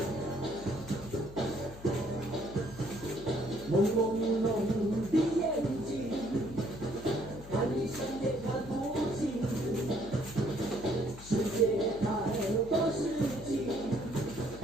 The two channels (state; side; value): noise; left; hum, 16 dB below the sound